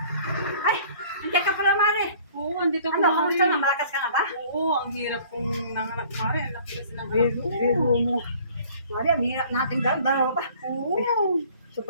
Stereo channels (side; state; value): both; inverted; correlation -0.52